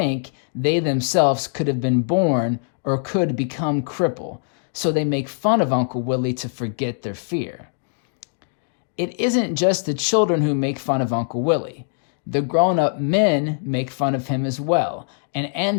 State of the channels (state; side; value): silent; right; digital silence